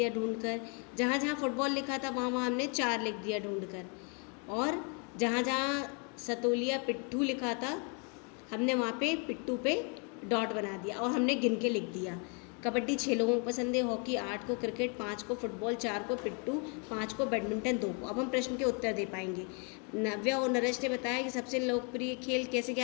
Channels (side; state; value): right; quieter; 36.7 dB